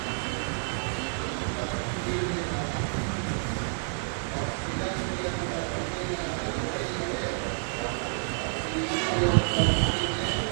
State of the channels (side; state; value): left; silent; 58 dB below the other